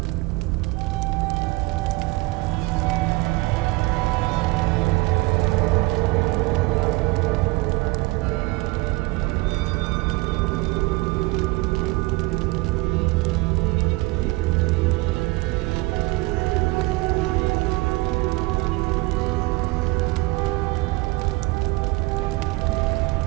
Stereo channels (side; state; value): left; quieter; 23.2 dB